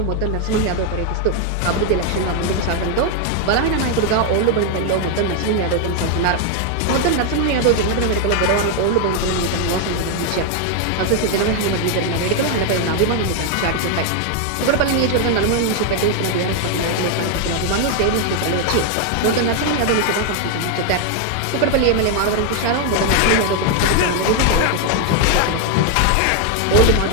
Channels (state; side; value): different; both; correlation 0.01